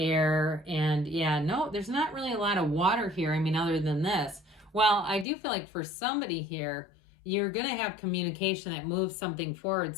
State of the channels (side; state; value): right; drops out; at 5.2 s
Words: and yeah, no, there's not really a lot of water here. I mean, other than this. Well, I do feel like for somebody here, you're going to have communication that moves something forward.